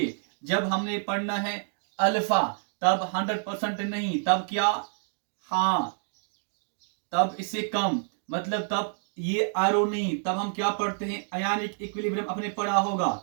जब हमने पढ़ना है अल्फा तब 100% नहीं, तब क्या, हाँ तब इससे कम, मतलब तब ये आरओ नहीं, तब हम क्या पढ़ते हैं आयनिक इक्विलिब्रियम, अपने पढ़ा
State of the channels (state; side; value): silent; left; digital silence